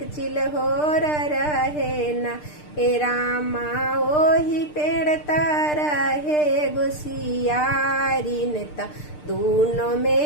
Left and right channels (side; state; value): right; late; 6.7 ms